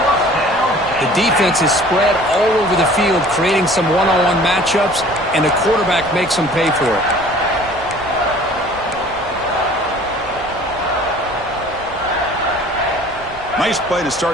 The defense is spread all over the field, creating some one-on-one matchups, and the quarterback makes them pay for it. Nice play to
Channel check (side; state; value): right; noise; rumble, 20 dB below the sound